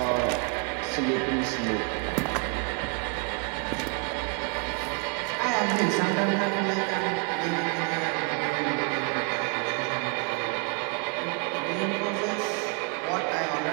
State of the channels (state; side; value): quieter; left; 36.1 dB